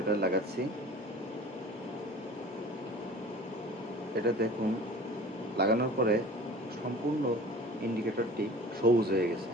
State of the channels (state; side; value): normal; both; correlation 0.42